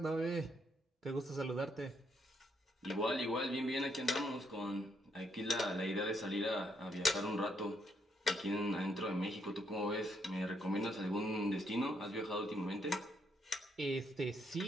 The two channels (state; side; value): normal; both; correlation 0.74